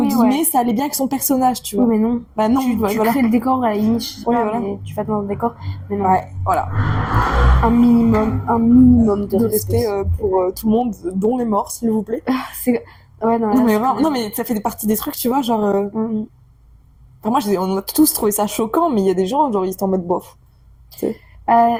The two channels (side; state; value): both; identical; correlation 1.00